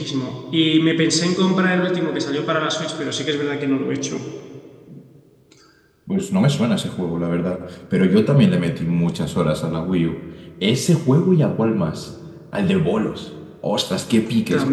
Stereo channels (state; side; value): identical; both; correlation 1.00